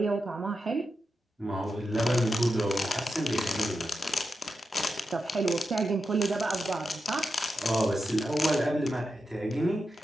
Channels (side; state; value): both; normal; correlation 0.88